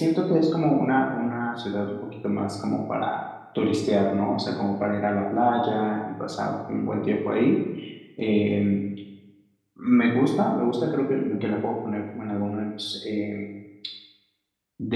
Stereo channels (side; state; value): both; identical; correlation 1.00